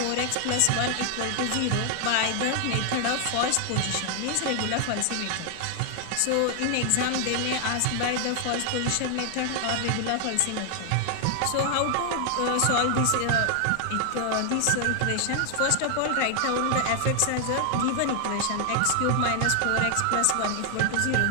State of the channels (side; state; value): both; different; correlation 0.00